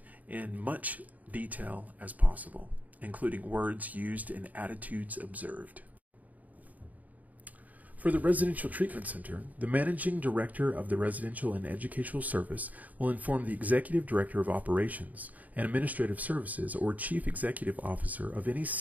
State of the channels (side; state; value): left; late; 0.076 ms